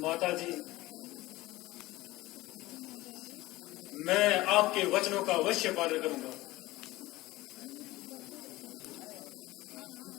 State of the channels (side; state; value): right; quieter; 18.7 dB